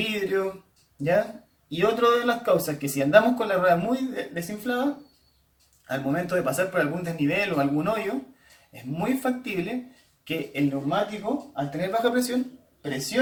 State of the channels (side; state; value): both; identical; correlation 1.00